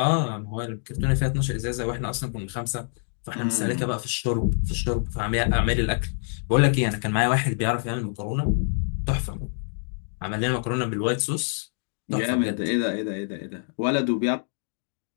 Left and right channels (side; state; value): right; silent; digital silence